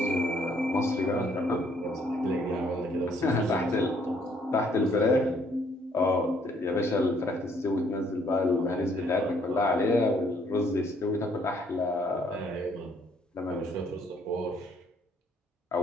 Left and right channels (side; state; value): both; normal; correlation 0.66